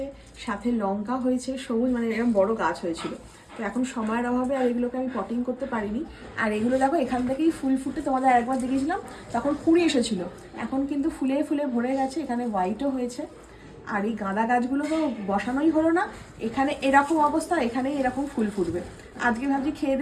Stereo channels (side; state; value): both; identical; correlation 1.00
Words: সাথে লঙ্কা হয়েছে, সবুজ মানে এরকম বড় গাছ হয়েছিল। তো এখন সময়ের অভাবে আর এগুলোকে আমি পটিং করতে পারিনি। আর এগুলো দেখো এখান থেকেই ফুল ফুটে, তোমাদের একবার দেখিয়েছিলাম তখন কুড়ি এসেছিলো, এখন কিন্তু ফুলে ফুলে ভরে গেছে, এখানে হোয়াইটও হয়েছে। আর এই গাঁদা গাছগুলো তো বসানোই হলো না, এখানে এরকম অবস্থা, এখানেই এরকম ফুল ফুটবে। আজকে ভাবছি খেয়ে